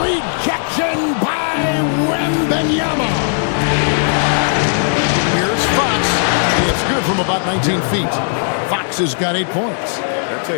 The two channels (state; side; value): silent; right; digital silence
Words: rejection by Wembanyama. Here's Fox. It's good from about 19 feet. Fox has got 8 points. I tell